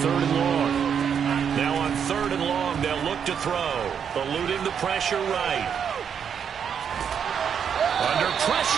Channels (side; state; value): left; quieter; 7.6 dB